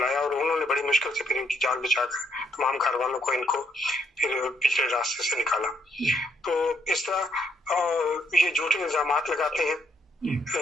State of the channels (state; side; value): normal; both; correlation 0.73